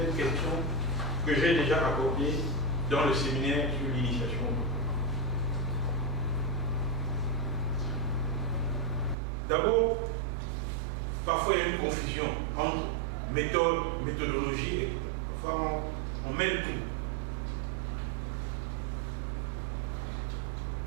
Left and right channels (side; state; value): left; drops out; at 9.2 s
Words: questions que j'ai déjà abordées dans le séminaire sur l'initiation. D'abord, parfois il y a une confusion entre méthode, méthodologie, et parfois on mêle tout.